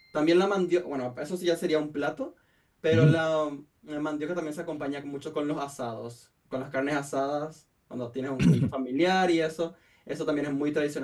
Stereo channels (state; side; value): identical; both; correlation 1.00